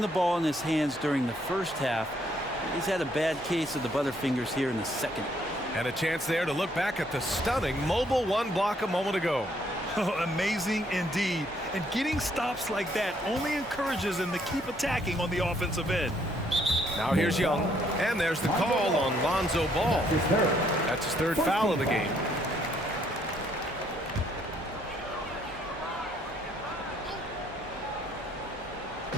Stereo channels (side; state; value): both; normal; correlation 0.68